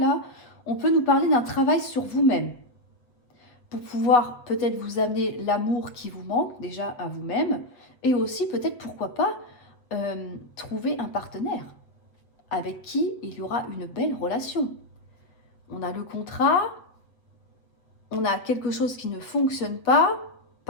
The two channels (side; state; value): right; late; 8.1 ms